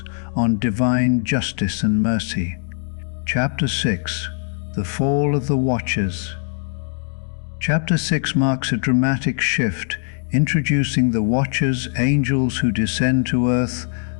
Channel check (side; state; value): right; silent; 59 dB below the other